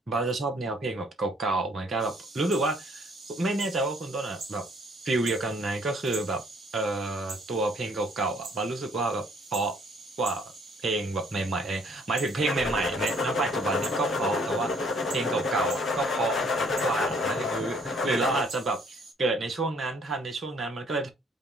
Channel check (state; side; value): normal; both; correlation 0.61